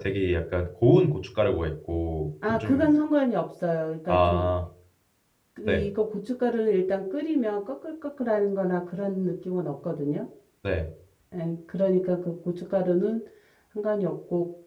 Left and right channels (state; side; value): identical; both; correlation 1.00